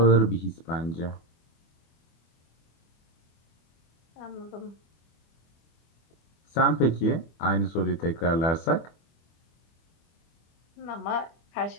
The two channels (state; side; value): late; right; 24 ms